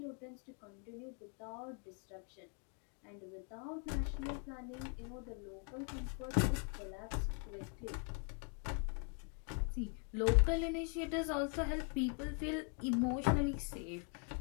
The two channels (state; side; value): quieter; right; 39.6 dB